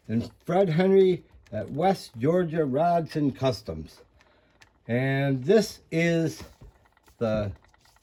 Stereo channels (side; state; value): both; identical; correlation 1.00